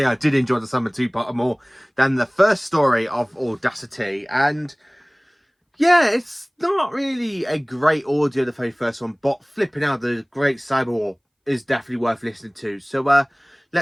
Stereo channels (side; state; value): both; identical; correlation 1.00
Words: I did enjoy the Cyberman two-parter more than the first story of Audacity. And yeah, it's not really a great audio, the very first one, but flipping out, the Great Cyber War is definitely worth listening to. So